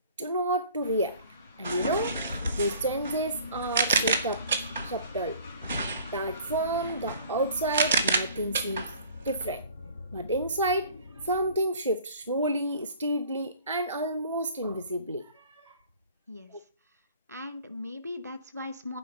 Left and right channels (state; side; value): inverted; both; correlation -0.50